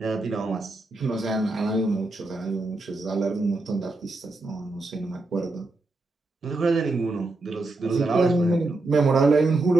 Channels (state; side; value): quieter; left; 3.0 dB